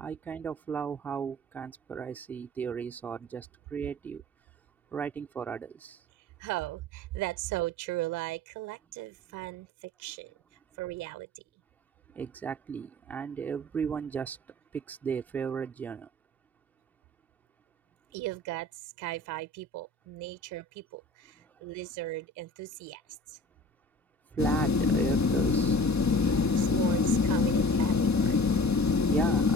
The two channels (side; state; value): both; normal; correlation 0.42